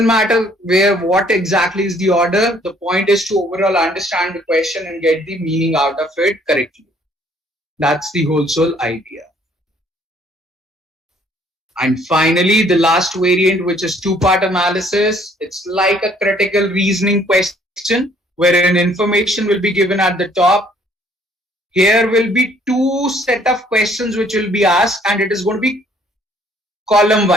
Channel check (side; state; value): both; normal; correlation 0.61